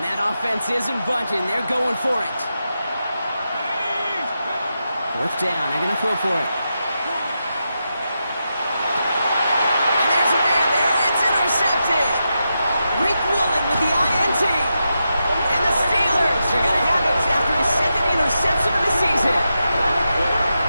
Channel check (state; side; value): inverted; both; correlation -0.87